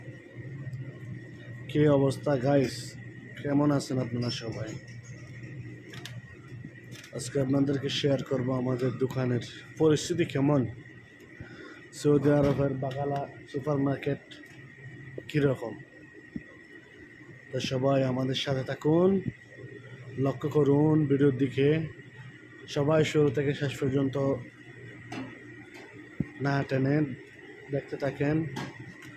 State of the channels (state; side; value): identical; both; correlation 1.00